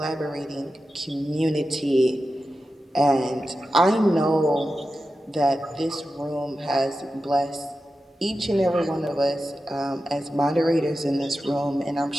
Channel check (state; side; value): normal; both; correlation 0.92